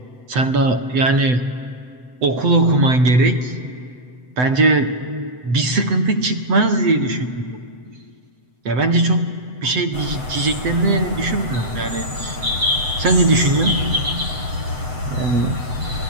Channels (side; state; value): left; late; 7.9 ms